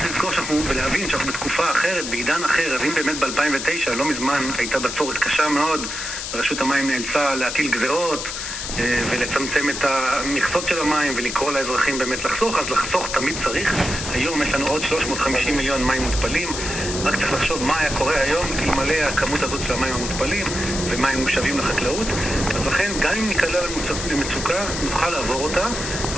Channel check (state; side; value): noise; left; hiss, 5 dB below the sound